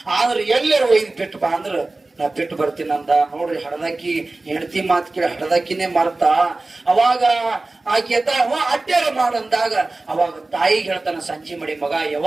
ಆದ್ರೆ ಎಲ್ಲರೂ ಒಯ್ದು ಬಿಟ್ಟು ಬಾ ಅಂದ್ರ ನಾ ಬಿಟ್ಟು ಬರ್ತೀನಿ ಅಂದ. ನೋಡ್ರಿ, ಹಡದಾಕಿ ಹೆಂಡತಿ ಮಾತು ಕೇಳಿ ಹಡದಾಕಿನೇ ಮರ್ತ. ಅವಾಗ ಆಕೆ ಅಡ್ಡಾರ ಮಾಡಂದಾಗ ಅವಾಗ ತಾಯಿಗೆ ಹೇಳ್ತಾನ ಸಂಜೆ ಮಾಡಿ, ಮಗ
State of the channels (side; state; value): left; quieter; 3.2 dB